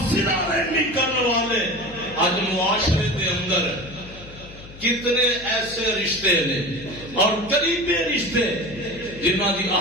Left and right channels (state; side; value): noise; left; hum, 17 dB below the sound